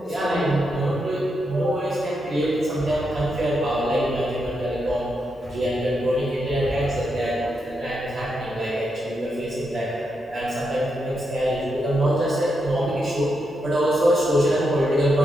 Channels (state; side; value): normal; both; correlation 0.83